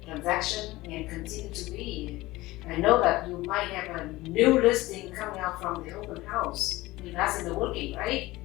transaction and continue to be. I know that you might have a new listing coming out from the open house. That's in the working, right?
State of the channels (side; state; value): right; quieter; 19.0 dB